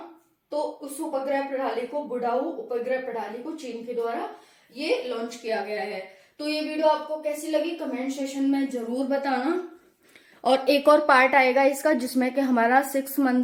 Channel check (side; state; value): both; identical; correlation 1.00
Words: तो उस उपग्रह प्रणाली को, वुडोउ उपग्रह प्रणाली को चीन के द्वारा ये लॉन्च किया गया है। तो ये वीडियो आपको कैसी लगी कमेंट सेशन में जरूर बताना। और एक और पार्ट आएगा इसका जिसमें कि हमारा 6